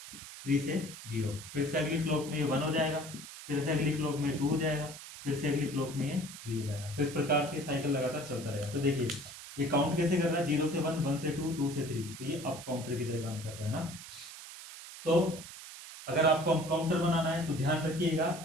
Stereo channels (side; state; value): right; noise; hiss, 13 dB below the sound